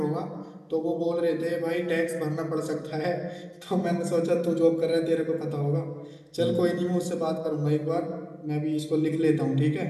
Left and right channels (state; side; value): identical; both; correlation 1.00